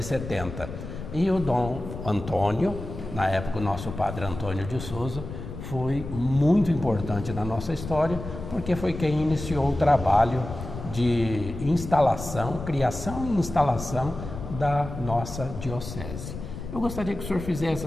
70. E o Dom Antônio, na época o nosso padre Antônio de Souza, foi muito importante na nossa história, porque foi quem iniciou o trabalho de instalação, criação e instalação da nossa diocese. Eu gostaria que o senhor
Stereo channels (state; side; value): noise; left; rumble, 9 dB below the sound